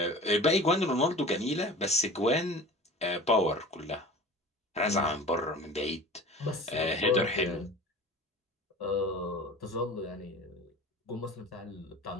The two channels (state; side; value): normal; both; correlation 0.39